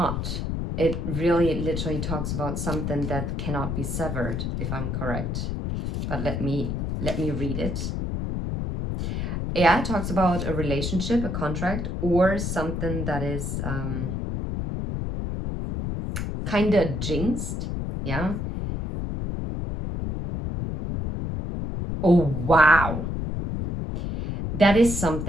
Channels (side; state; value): left; noise; rumble, 3 dB below the sound